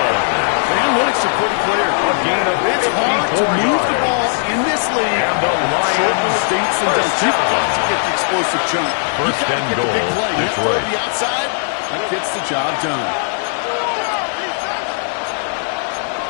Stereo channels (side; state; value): right; silent; digital silence